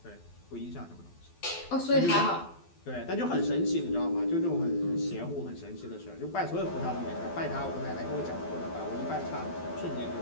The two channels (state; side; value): late; right; 12 ms